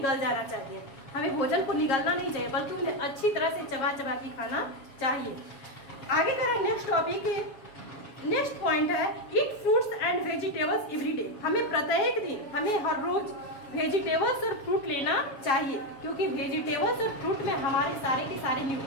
जाना चाहिए। हमें भोजन को निगलना नहीं चाहिए बल्कि उन्हें अच्छी तरह से चबा चबा के खाना चाहिए। आगे कह रहा है नेक्स्ट टॉपिक, नेक्स्ट पॉइंट है ईट fruits and vegetables every day. हमें प्रत्येक दिन, हमें हर रोज वेजिटेबल्स और फ्रूट लेना चाहिए, क्योंकि वेजिटेबल्स और फ्रूट में हमारे सारे के सारे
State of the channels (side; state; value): right; late; 7.2 ms